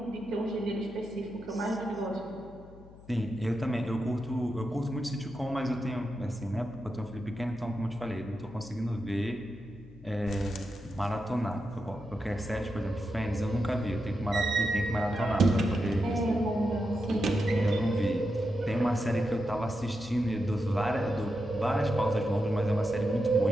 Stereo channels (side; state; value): left; noise; hum, 21 dB below the sound